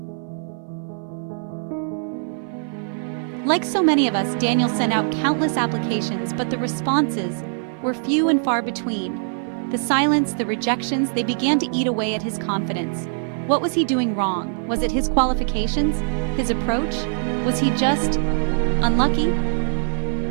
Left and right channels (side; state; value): left; silent; 57 dB below the other